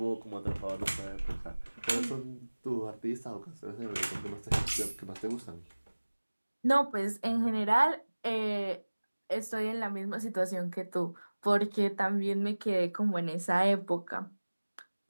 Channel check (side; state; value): both; inverted; correlation -1.00